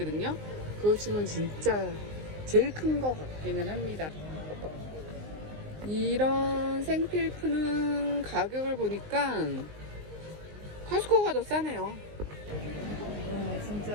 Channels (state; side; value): late; left; 19 ms